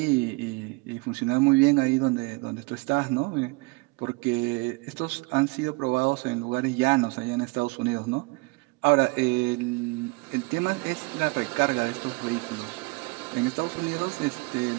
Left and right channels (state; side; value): quieter; left; 27.4 dB